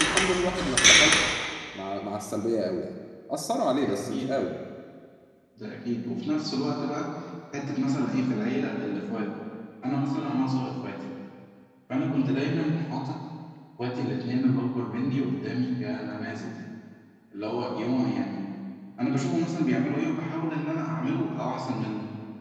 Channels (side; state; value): both; identical; correlation 1.00